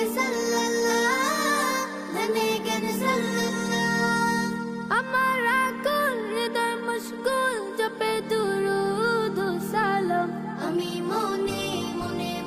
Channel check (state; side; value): identical; both; correlation 1.00